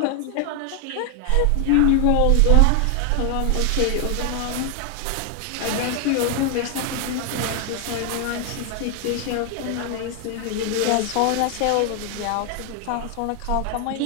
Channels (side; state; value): both; different; correlation 0.01